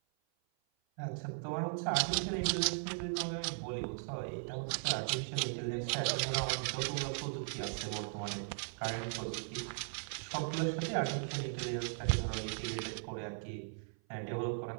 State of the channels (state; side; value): silent; left; 53 dB below the other